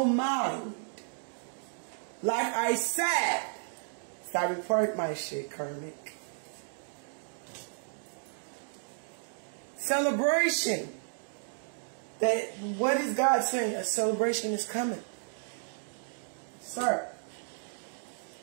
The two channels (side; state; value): left; silent; digital silence